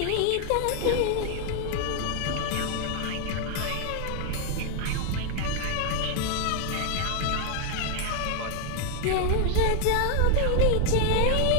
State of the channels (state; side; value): different; both; correlation 0.00